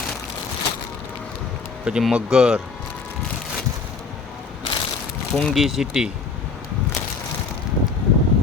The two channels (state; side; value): quieter; right; 4.8 dB